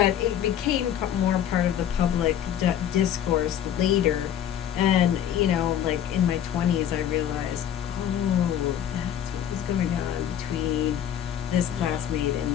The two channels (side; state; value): right; quieter; 10.1 dB